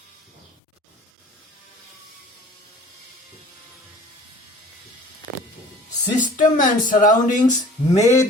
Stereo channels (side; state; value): both; normal; correlation 0.48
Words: System and surroundings